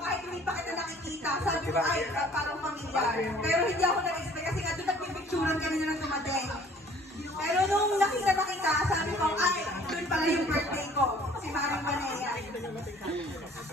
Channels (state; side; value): normal; both; correlation 0.54